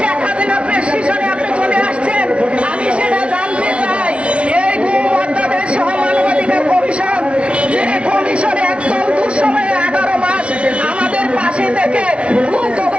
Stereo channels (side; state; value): left; late; 0.060 ms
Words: শেখ হাসিনার প্রেসক্রিপশনে আপনি চলে আসছেন? আমি সেটা জানতে চাই। এই অধ্যাদেশ সহ মানবাধিকার কমিশন, যে কমিশনে একদম দুঃসময়ে 11 মাস আমাদের পাশে থেকে